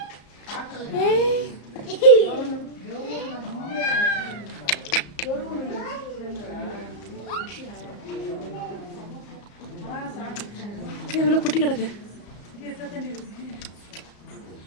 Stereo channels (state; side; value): late; right; 34 ms